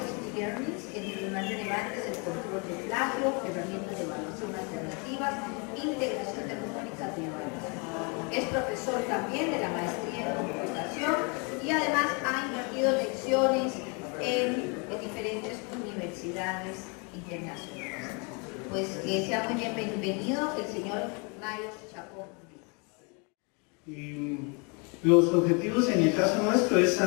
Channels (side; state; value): right; quieter; 33.2 dB